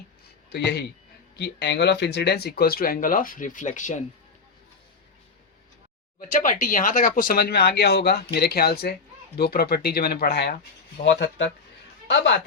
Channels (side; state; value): right; quieter; 4.6 dB